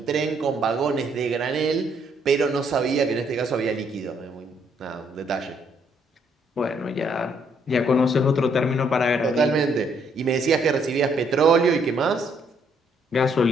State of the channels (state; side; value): normal; both; correlation 0.69